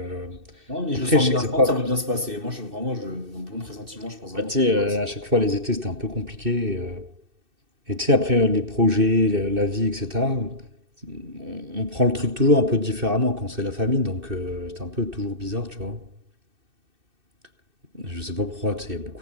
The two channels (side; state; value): left; late; 2.6 ms